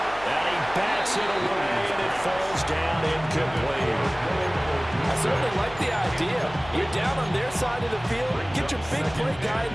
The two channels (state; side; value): noise; left; hum, 17 dB below the sound